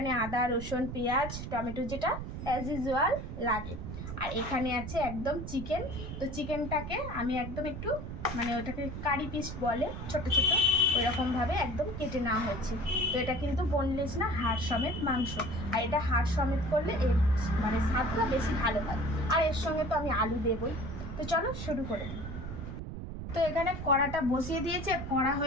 আদা, রসুন, পেঁয়াজ, টমেটো, যেটা অ্যাজ ইউজুয়াল লাগে। আর এখানে আছে একদম চিকেন। তো চিকেনটাকে আমি একদম একটু ওটাকে কারি পিস বলে, ছোট ছোট, ওইরকমভাবে একদম কেটে নেওয়া হয়েছে। তো এটা কিন্তু বোনলেস না, হাড় সমেত মাংস। আর এটা হাড় সমেত করলে এর স্বাদটা বেশি ভালো হয়। আর এর সঙ্গে তো আমি আলু দেবই। তো চলো শুরু করে দিই। তো এখানে কড়াটা বসিয়ে দিয়েছে, কড়া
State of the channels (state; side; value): noise; right; rumble, 7 dB below the sound